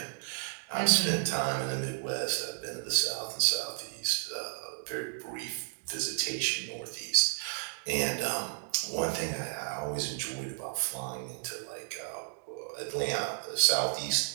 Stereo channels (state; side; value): silent; left; digital silence